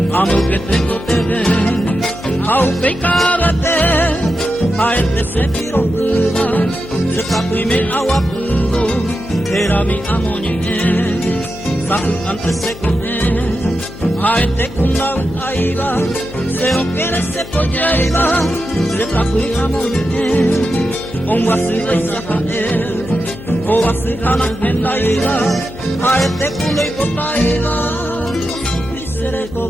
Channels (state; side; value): noise; left; hum, 14 dB below the sound